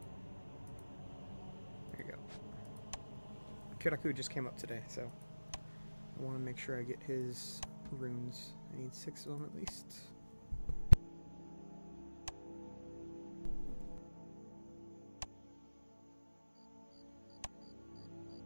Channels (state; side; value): inverted; both; correlation -1.00